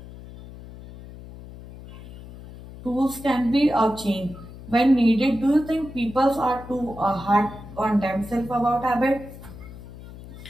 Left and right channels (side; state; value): left; noise; hum, 16 dB below the sound